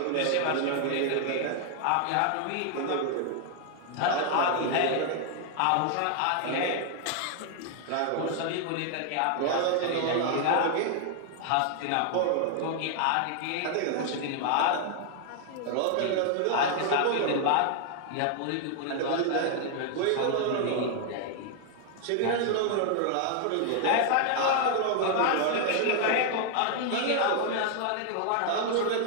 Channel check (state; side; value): different; both; correlation 0.00